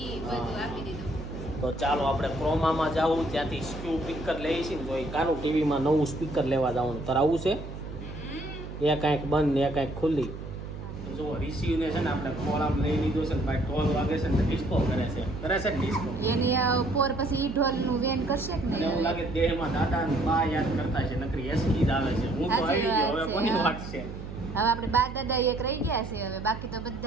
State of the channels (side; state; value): right; noise; hum, 10 dB below the sound